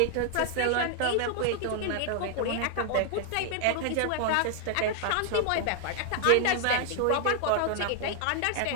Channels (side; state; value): both; different; correlation 0.00